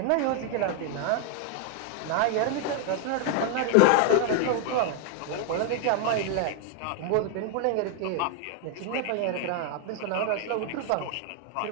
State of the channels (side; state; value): both; different; correlation 0.00